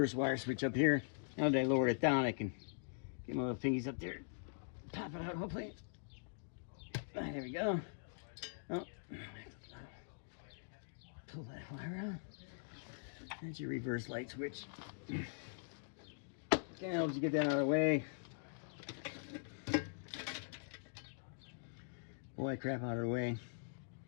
wire switch up here. Now that I lowered it down, I can get my little fingies up there. Pop it out, hopefully. There we go. Oh. Pull that wire out. That's your reverse light switch. Okay, helps you get that out of the way. Pull that crap out of the way.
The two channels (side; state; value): right; silent; digital silence